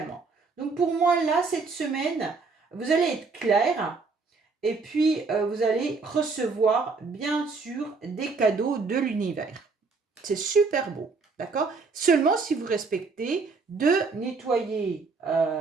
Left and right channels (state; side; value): quieter; left; 4.4 dB